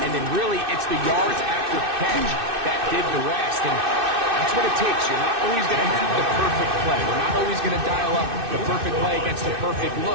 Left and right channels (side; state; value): left; late; 2.6 ms